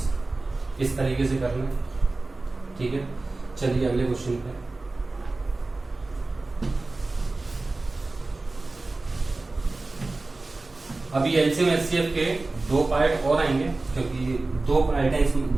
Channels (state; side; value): quieter; left; 3.3 dB